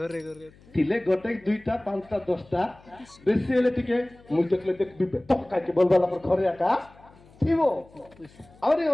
ଥିଲେ ଗୋଟେ ଦୁଇଟା ପାଞ୍ଚଟା ଦଶଟା ବେଶୀ ହେଲେ ଟିକେ ମୁଁ ଦେଖିଲେ ଦେଖିବି ବେତକ କାହିଁକି ବୋଲବାଲା ପରେ ଘରେ ଏକା ଥିବ ଆହୁରି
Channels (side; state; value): left; noise; hum, 26 dB below the sound